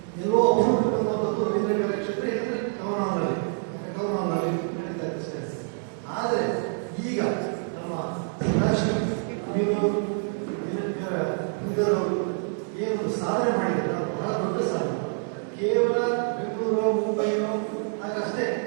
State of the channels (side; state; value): left; silent; 58 dB below the other